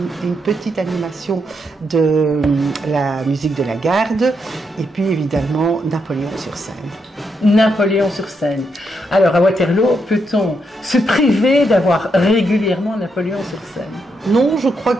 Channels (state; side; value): normal; both; correlation 0.80